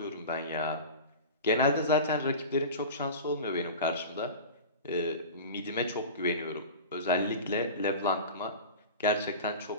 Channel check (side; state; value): both; inverted; correlation -0.32